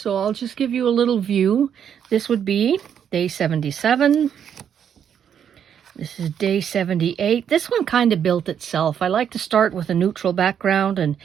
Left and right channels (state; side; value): quieter; left; 8.5 dB